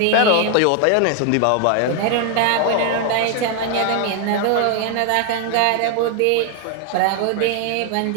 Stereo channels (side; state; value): both; different; correlation 0.00